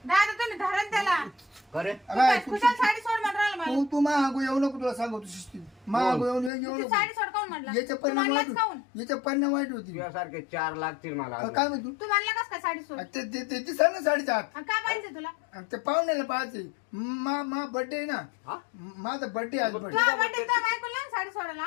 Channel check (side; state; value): right; drops out; at 6.5 s